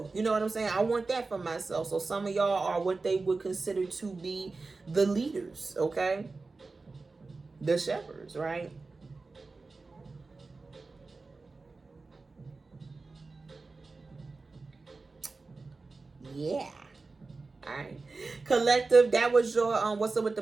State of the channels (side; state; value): left; quieter; 3.8 dB